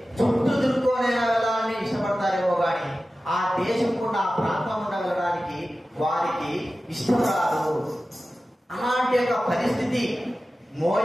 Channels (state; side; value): normal; both; correlation 0.95